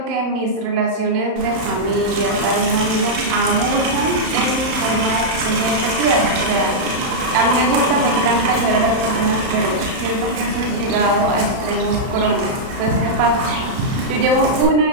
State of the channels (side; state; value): left; late; 31 ms